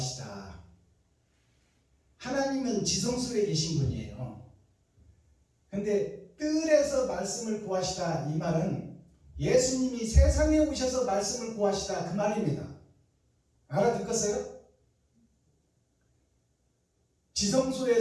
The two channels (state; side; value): identical; both; correlation 1.00